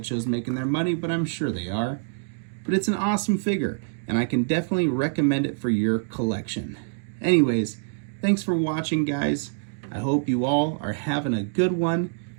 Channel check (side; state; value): left; silent; digital silence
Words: making their money, but I'm sure they are. But it's an awesome figure, and I can definitely recommend it for your collection. Anyways, thanks for watching, guys. I hope you all are having a good one.